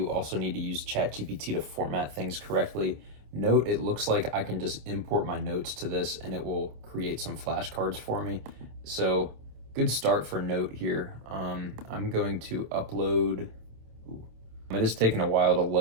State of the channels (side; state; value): left; late; 26 ms